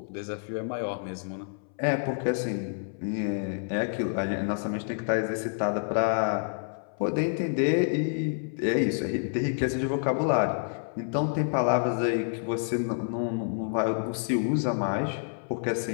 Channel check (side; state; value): right; silent; 59 dB below the other